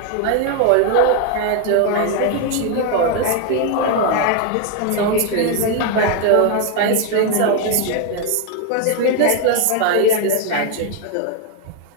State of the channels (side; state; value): both; different; correlation 0.01